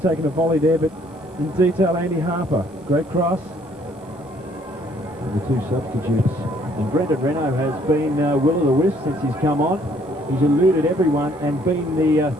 taken a volley there, but in detail, Andy Harper. Great cross. And the two substitutes. And Brendan Renault has been will o' the wisp since he's come on. He's eluded everyone and been the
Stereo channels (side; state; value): both; normal; correlation 0.63